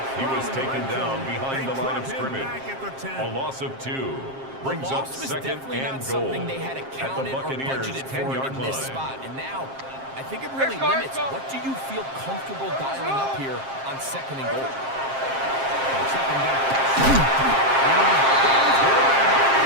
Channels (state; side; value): late; left; 7.5 ms